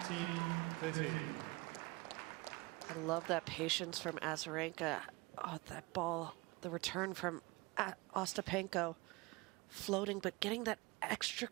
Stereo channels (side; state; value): left; quieter; 24.1 dB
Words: I love that patience from Azarenka. Oh, that ball, the return from Ostapenko, floating, but getting that extra